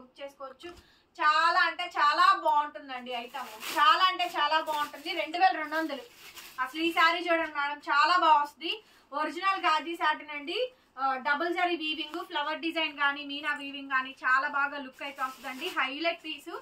చేసుకోవచ్చు. చాలా అంటే చాలా బాగుంటుందండి ఐటమ్. చాలా అంటే చాలా బాగుంటుంది. 2200. అసలు ఈ శారీ చూడండి మేడం, చాలా బాగా వస్తుంది. ఒరిజినల్ గాజీ సాటిన్ అండి. Double zari weaving, flower design కానీ మీనా వీవింగ్ కానీ చాలా బాగా లుక్ అయితే వస్తుందండి. Highlight piece,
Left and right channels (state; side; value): identical; both; correlation 1.00